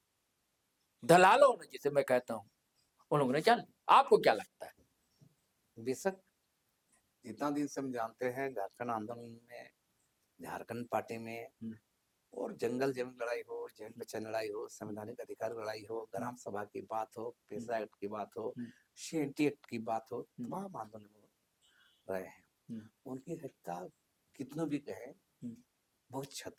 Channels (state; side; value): identical; both; correlation 1.00